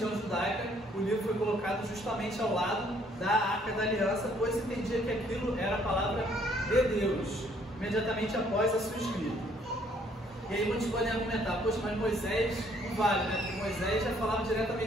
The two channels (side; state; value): both; normal; correlation 0.64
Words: judaica. O livro foi colocado justamente ao lado da arca da aliança, pois entendia que aquilo era a palavra de Deus, imediatamente após a sua escrita. E aí muitos podem argumentar, poxa, mas Moisés não vale, né? Porque Moisés já falava